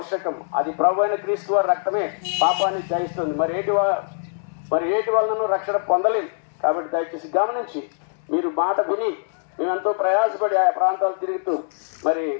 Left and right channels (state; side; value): silent; right; digital silence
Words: అది ప్రభువైన క్రీస్తు వారి రక్తమే పాపాన్ని జయిస్తుంది. మరి ఏటి వలన రక్షణ పొందలేదు. కాబట్టి దయచేసి గమనించి మీరు మాట విని మేమెంతో ప్రయాసపడి ఆయా ప్రాంతాలు తిరుగుతూ మరి